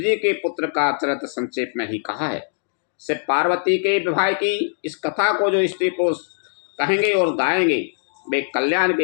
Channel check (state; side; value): silent; right; digital silence